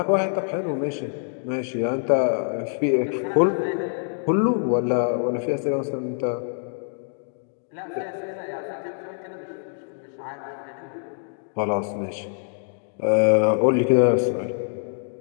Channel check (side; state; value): right; silent; digital silence